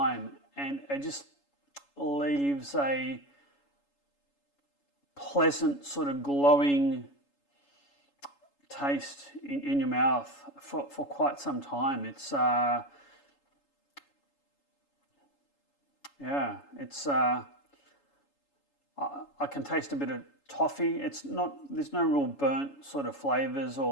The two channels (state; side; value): late; right; 7.1 ms